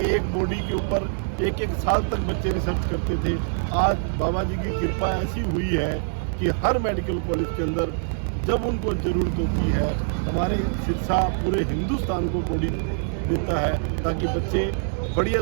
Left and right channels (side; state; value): left; silent; digital silence